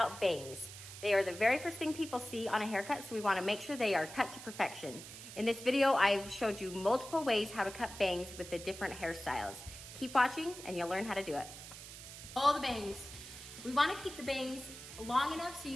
bangs. They are the very first thing people see on a haircut, so we want to make sure they are cut to perfection. In this video, I've showed you multiple ways how to cut bangs with the different hairstyles. Keep watching and you'll learn how to do it. All the bangs. We want to keep the bangs long enough so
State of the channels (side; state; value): right; noise; hiss, 13 dB below the sound